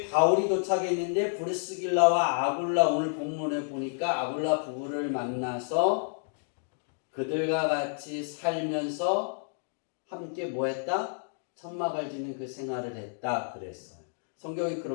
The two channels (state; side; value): silent; right; digital silence